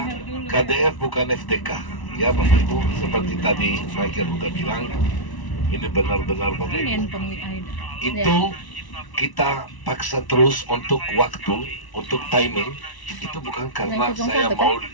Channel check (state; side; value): late; right; 1.0 ms